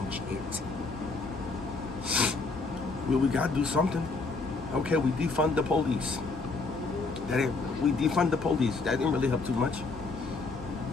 it? We got to do something. Okay, we defund the police. We defund the police. That didn't really help too much.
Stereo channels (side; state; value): right; quieter; 3.8 dB